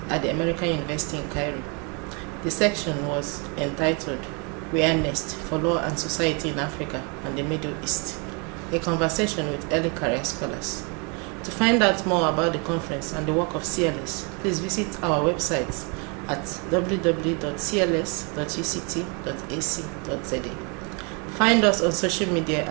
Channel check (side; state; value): left; quieter; 33.8 dB